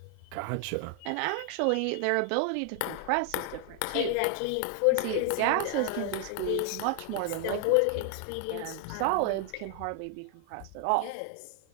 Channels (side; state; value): both; different; correlation 0.00